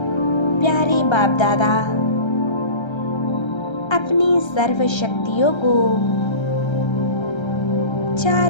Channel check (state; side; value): late; right; 1.3 ms